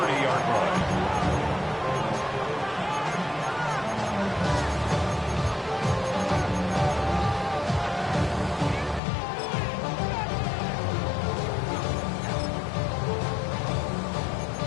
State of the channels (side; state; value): right; drops out; at 9.0 s